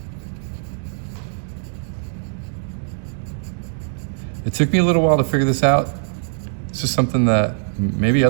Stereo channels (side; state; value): left; silent; digital silence